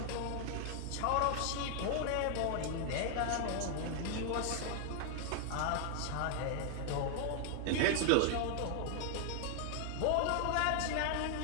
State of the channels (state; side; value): different; both; correlation 0.00